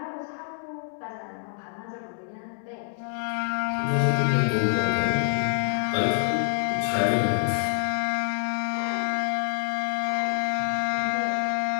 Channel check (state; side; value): silent; right; 60 dB below the other